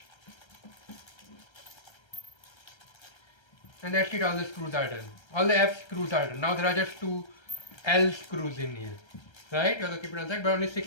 And that's it, all the screws are done. All the F screws are done. Now there are just 2 L screws in here. Right? You have to keep it on side, but only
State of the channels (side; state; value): right; late; 1.3 ms